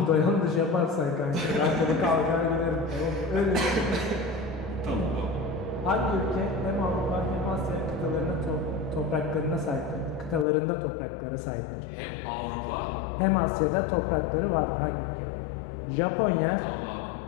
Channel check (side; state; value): right; drops out; at 10.5 s